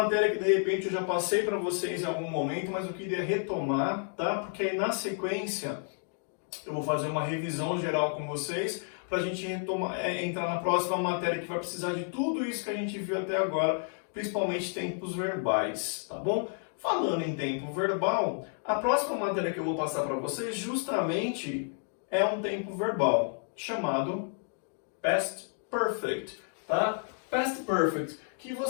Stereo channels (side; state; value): right; silent; 57 dB below the other